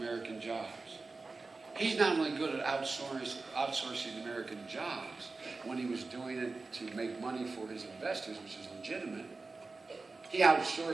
jobs. He's not only good at outsourcing American jobs when he was doing it to make money for his investors, which is legitimate. He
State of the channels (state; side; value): quieter; left; 3.8 dB